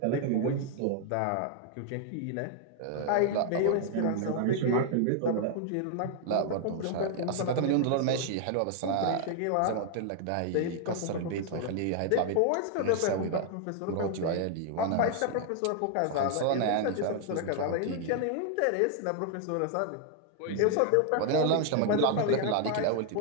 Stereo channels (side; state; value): both; different; correlation 0.00